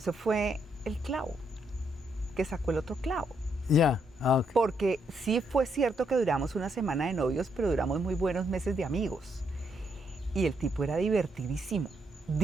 fue el clavo, que sacó el otro clavo. Ya, okay. Porque sí fue cierto que duramos una semana de novios, pero duramos muy buenos meses de amigos. Y el tipo era divertidísimo,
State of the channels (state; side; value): normal; both; correlation 0.76